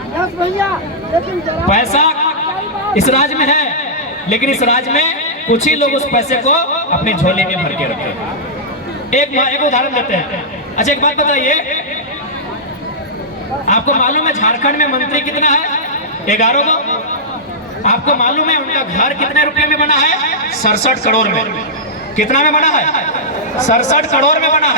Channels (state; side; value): normal; both; correlation -0.12